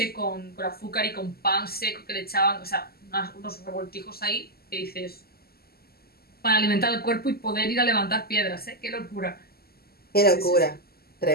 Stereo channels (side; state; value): right; late; 0.45 ms